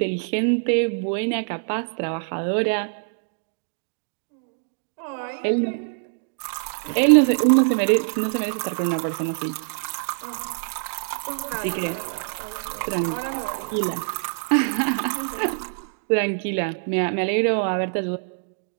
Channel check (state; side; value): silent; left; digital silence